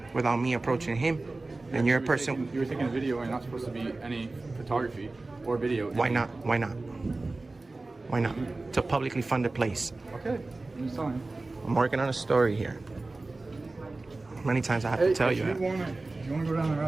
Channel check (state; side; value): quieter; left; 3.3 dB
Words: without me approaching him, and you're a person. You were taking a video and you're not supposed to be any photography or video. Why not? Why not? Why not? It's a publicly funded place. Okay, I'm just telling you. I'm working on a story here. How many times I have to tell you that? If you want to go down the